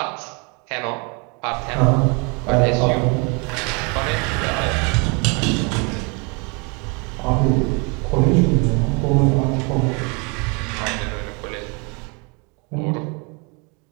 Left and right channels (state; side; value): quieter; left; 31.8 dB